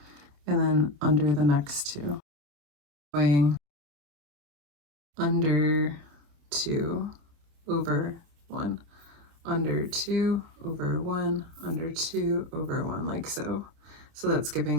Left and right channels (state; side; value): late; left; 28 ms